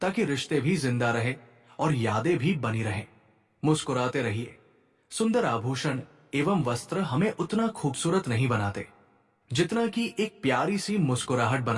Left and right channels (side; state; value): both; identical; correlation 1.00